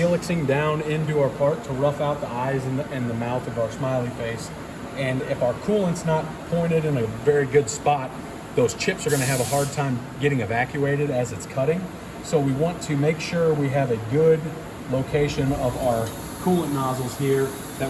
down into our part to rough out the eyes and the mouth of our smiley face. And if our coolant's not pointed in a very good spot, those chips are going to have a hard time getting evacuated as it's cutting. So we want to make sure we have a good location of our coolant nozzles here,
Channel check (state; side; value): identical; both; correlation 1.00